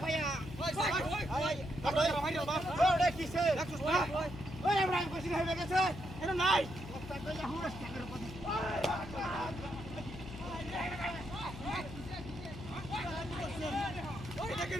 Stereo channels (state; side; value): noise; left; hum, 11 dB below the sound